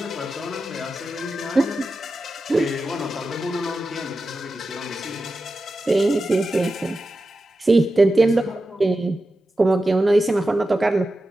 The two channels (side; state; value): both; normal; correlation 0.92